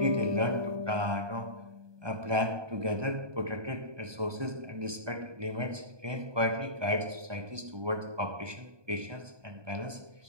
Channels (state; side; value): late; left; 1.2 ms